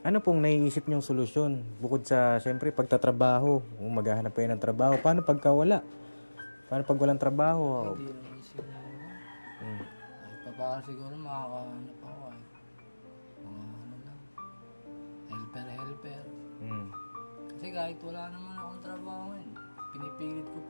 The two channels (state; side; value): inverted; both; correlation -1.00